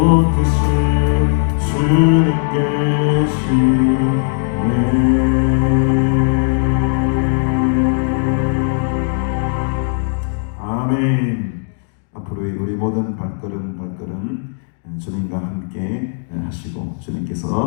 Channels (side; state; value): right; silent; 62 dB below the other